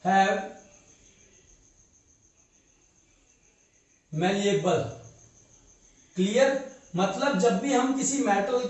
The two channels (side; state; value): both; identical; correlation 1.00